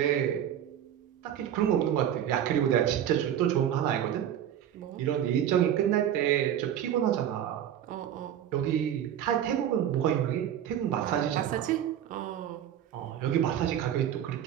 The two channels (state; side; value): quieter; left; 10.3 dB